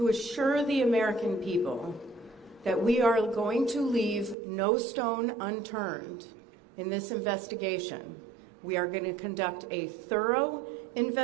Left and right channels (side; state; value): left; drops out; at 4.4 s